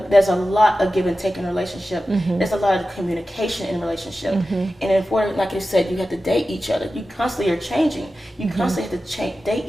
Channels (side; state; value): both; normal; correlation 0.93